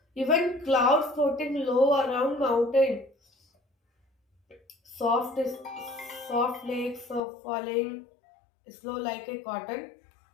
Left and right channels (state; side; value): drops out; right; at 7.2 s